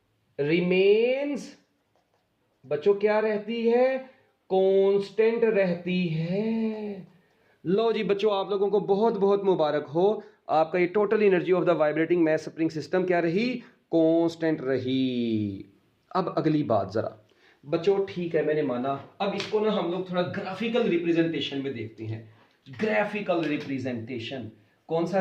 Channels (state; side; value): identical; both; correlation 1.00